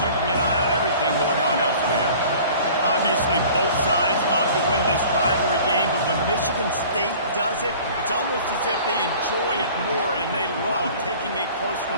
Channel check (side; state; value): both; inverted; correlation -0.46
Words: keeping an eye on everything going on elsewhere. Obviously, both sides love to win this rivalry game, but when Michigan State does it, it's almost as if they enjoy it more, and they love taking a close